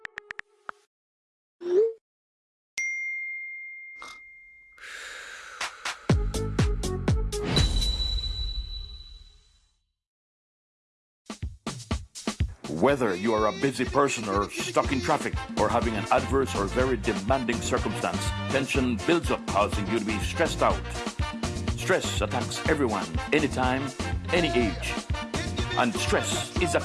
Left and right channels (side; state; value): both; identical; correlation 1.00